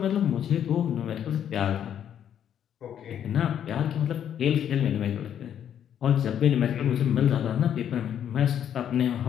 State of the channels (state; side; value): quieter; right; 9.5 dB